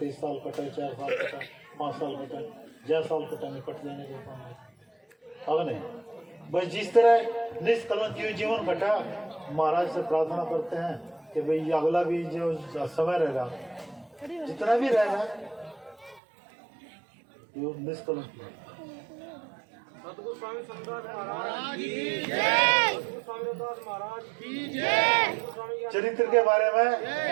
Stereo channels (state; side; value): drops out; left; at 16.2 s